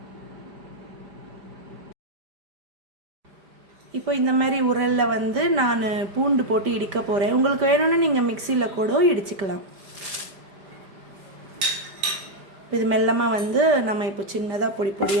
இப்போ இந்த மாதிரி உரலில் வந்து நான் பூண்டு போட்டு இடிக்க போகிறேன். உங்களுக்கு வேணும்னா நீங்கள் மிக்சியில் கூட இடிச்சுக்கலாம். இது மெல்லமாக வந்து நம்ம இப்போ சின்னதாக பொடி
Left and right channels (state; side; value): late; left; 5.1 ms